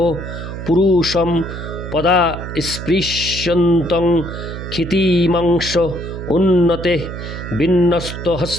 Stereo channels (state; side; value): noise; right; hum, 8 dB below the sound